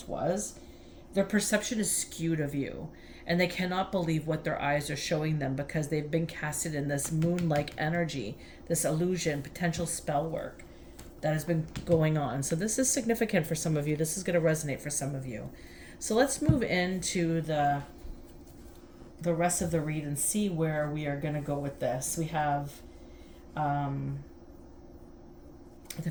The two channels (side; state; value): both; identical; correlation 1.00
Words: was? Their perception is skewed of you, and they cannot believe what their eyes are showing them because they've been casted in this moon-like energy, this illusion, potential spell work that has been going on. So this is significant for some of you. This is going to resonate for some of you. So let's move into the rest of the read and see where we are going to go with this. We have the